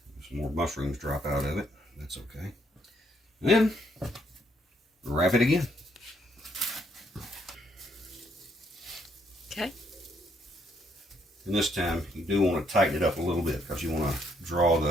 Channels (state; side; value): normal; both; correlation 0.72